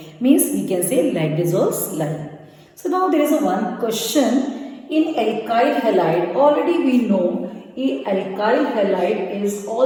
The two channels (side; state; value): both; identical; correlation 1.00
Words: Means we can say like dissolves like. So now there is a one question in alkyl halide. Already we know alkyl halide is